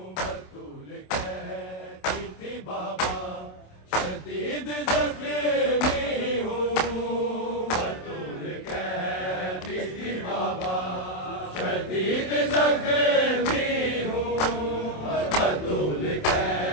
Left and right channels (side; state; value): right; late; 27 ms